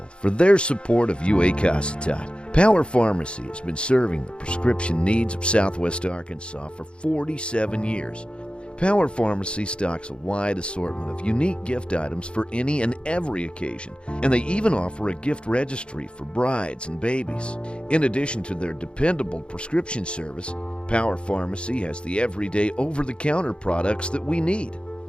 for their support of UAC. Power Pharmacy has been serving the prescription needs of Southwest Arkansas for 47 years. Power Pharmacy stocks a wide assortment of unique gift items for any and every occasion, and they even offer a gift registry for brides and babies. In addition to their dependable prescription service, Power Pharmacy has the everyday over-the-counter products that we need.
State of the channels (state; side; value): late; right; 0.055 ms